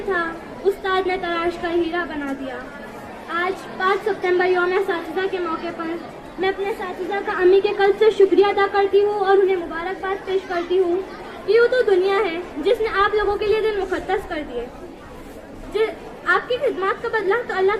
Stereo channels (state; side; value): identical; both; correlation 1.00